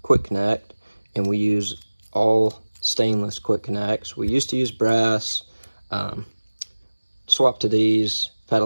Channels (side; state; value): both; inverted; correlation -1.00